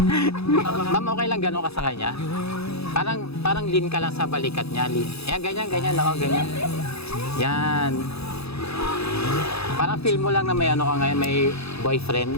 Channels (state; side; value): late; right; 0.79 ms